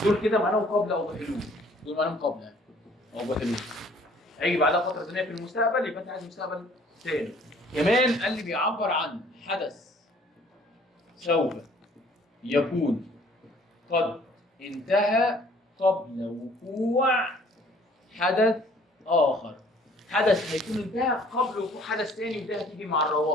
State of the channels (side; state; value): both; normal; correlation 0.57